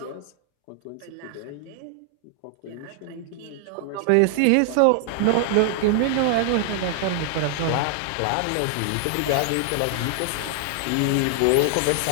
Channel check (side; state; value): both; different; correlation 0.00